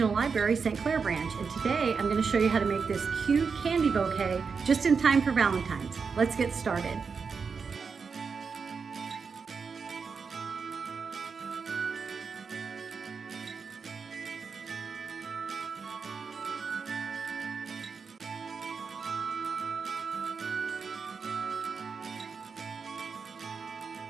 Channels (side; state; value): left; quieter; 5.4 dB